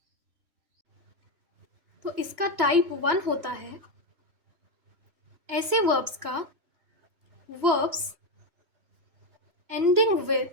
तो इसका टाइप 1 होता है ऐसे वर्ब्स का verbs ending with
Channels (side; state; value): left; late; 2.9 ms